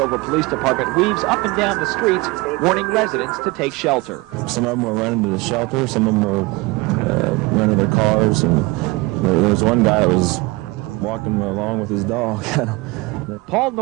Police Department weaves up and down the streets, warning residents to take shelter. Some of them were running to the shelter, some of them were running to their cars, and there was one guy that was walking along with his dog. Paul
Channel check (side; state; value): left; quieter; 23.7 dB